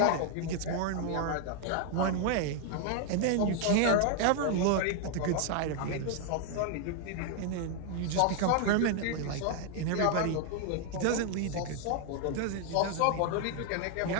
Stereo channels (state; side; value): different; both; correlation 0.00